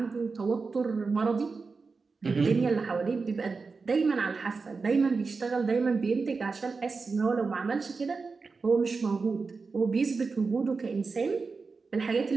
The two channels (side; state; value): left; quieter; 4.5 dB